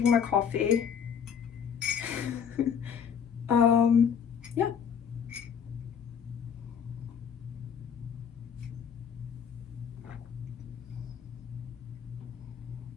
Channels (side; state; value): right; quieter; 7.6 dB